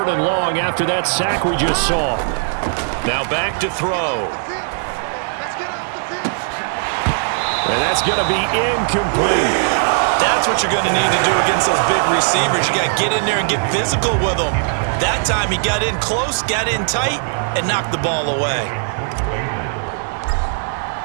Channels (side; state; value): left; silent; digital silence